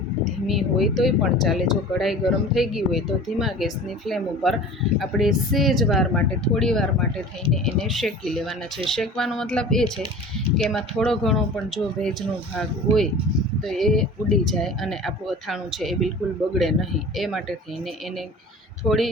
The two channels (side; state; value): both; normal; correlation 0.41